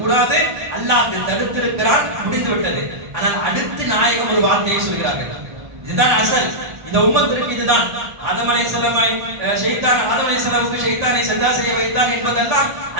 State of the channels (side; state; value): left; late; 1.8 ms